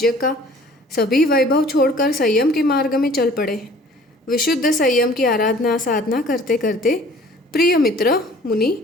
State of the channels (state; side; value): normal; both; correlation 0.51